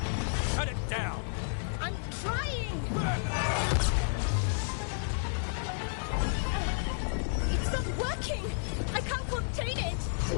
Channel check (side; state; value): right; silent; 57 dB below the other